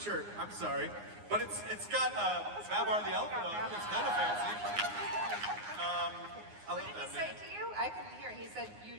I'm sorry, but it's got Babar the elephant on it. It's kind of fancy. I What love did he that say man. to you? I couldn't hear. He said,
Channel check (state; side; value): late; left; 9.7 ms